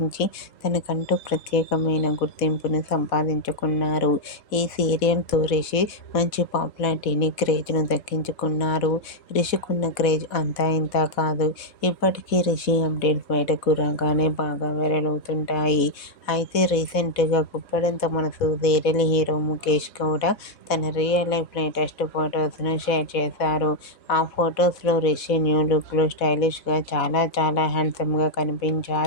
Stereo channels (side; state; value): right; late; 4.1 ms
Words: తనకంటూ ప్రత్యేకమైన గుర్తింపును సంపాదించుకున్నారు. ఈ సీరియల్తో రిషి మంచి పాపులారిటీని, క్రేజ్ను దక్కించుకున్నారు. రిషికున్న క్రేజ్ అంతా ఇంతా కాదు. ఇప్పటికీ రిషి అప్డేట్స్ బయటకు రాగానే బాగా వైరల్ అవుతుంటాయి. అయితే రీసెంట్గా గుప్పడంత మనసు సీరియల్ హీరో ముఖేష్ గౌడ తన రియల్ లైఫ్ లేటెస్ట్ ఫొటోస్ను షేర్ చేశారు. ఆ ఫొటోస్లో రిషి న్యూ లుక్లో స్టైలిష్గా చాలా చాలా హ్యాండ్సమ్గా